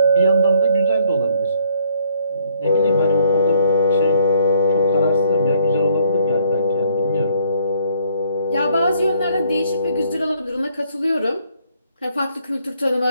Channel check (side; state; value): both; inverted; correlation -0.66